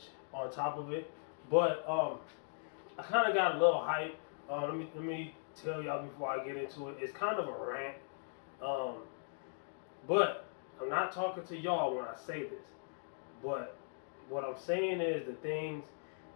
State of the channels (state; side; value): silent; right; digital silence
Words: on top of it. But I kind of got a little hype. Let me tell y'all before I get into it. It's kind of a rant. But I'm not talking to y'all when I say this. But what I'm saying is the